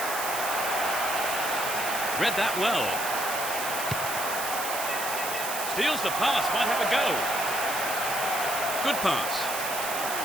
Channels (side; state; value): right; noise; hiss, 4 dB below the sound